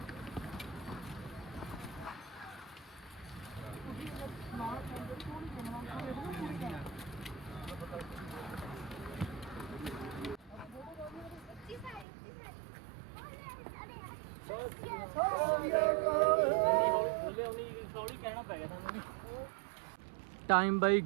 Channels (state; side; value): drops out; left; at 12.1 s